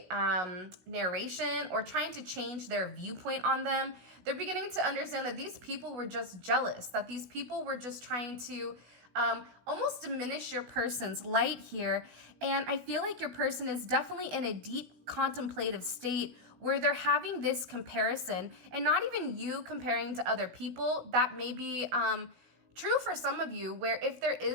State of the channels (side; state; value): left; late; 16 ms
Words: narration or trying to change their viewpoint on them, they're beginning to understand that these people were just jealous, that these people were just trying to almost diminish your person's light here. And I feel like your person is definitely in a deep contemplative state where they're having this comparison, and not even you comparing to other people. That may be true for some of you, where if there